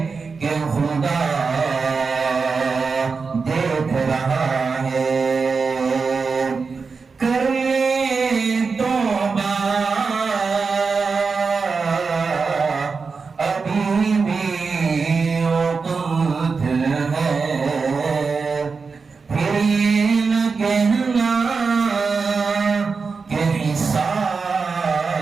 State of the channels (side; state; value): left; quieter; 4.8 dB